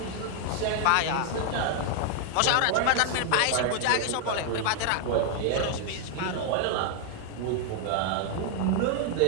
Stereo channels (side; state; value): both; different; correlation 0.00